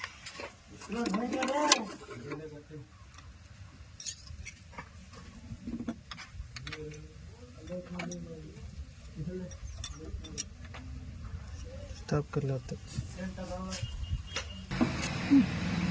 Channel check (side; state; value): both; identical; correlation 1.00